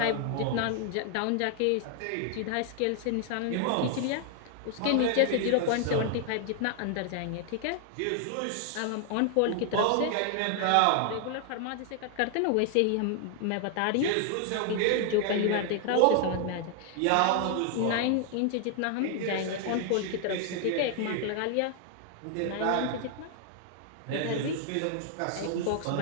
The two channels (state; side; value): different; both; correlation 0.00